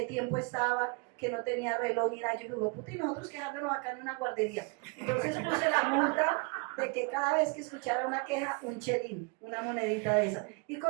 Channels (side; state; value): left; quieter; 31.3 dB